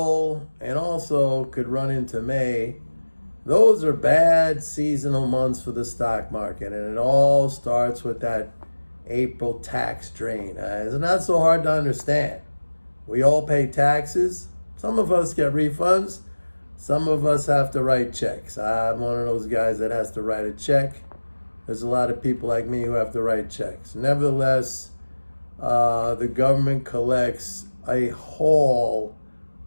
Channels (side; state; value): both; inverted; correlation -1.00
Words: and also could run into May. Those are bad seasonal months for the stock market. And it all starts with that April tax drain. It's not so hard to understand. We all pay taxes. Some of us get refunds. Some of us have to write checks. I'm one of those guys that has to write a check. There's a lot of people like me who have to write checks. Nevertheless, the government collects a haul